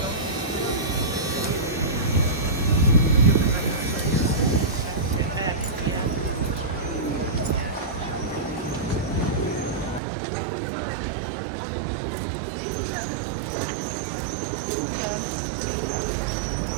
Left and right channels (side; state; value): left; drops out; at 10.0 s